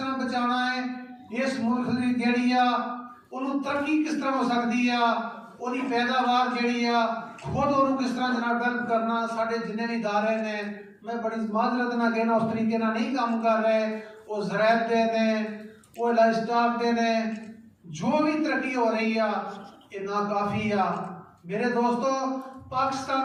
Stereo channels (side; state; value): both; identical; correlation 1.00